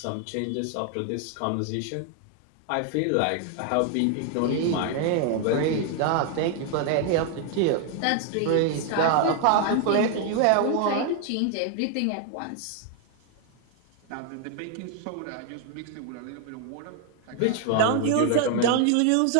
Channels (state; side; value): different; both; correlation 0.00